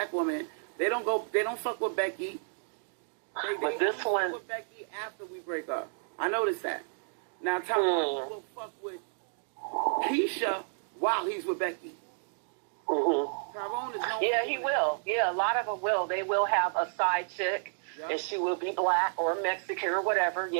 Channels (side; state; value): left; silent; digital silence